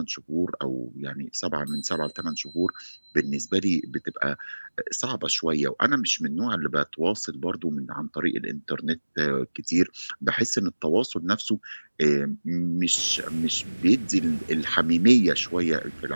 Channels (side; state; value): both; inverted; correlation -1.00